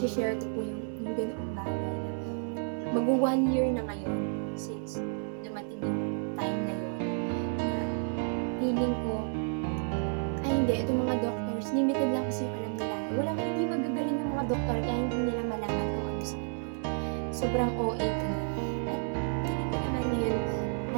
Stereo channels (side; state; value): left; silent; 57 dB below the other